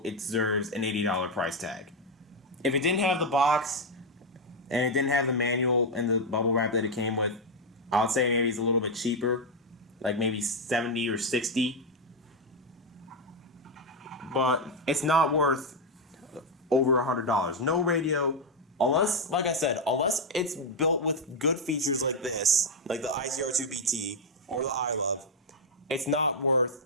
it deserves an $80 price tag. If it didn't have the box and it didn't have the manual and the bubble wrap that it came with, I would say maybe it's a little bit cheaper, like maybe $70 or $60. But it's not worth over $100. No radio, unless, like I said, unless it's built with good features like this, like the ICR2BT or the iLove, it's not worth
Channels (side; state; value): both; normal; correlation 0.03